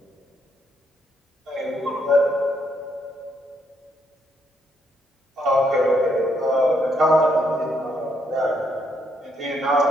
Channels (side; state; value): both; normal; correlation 0.74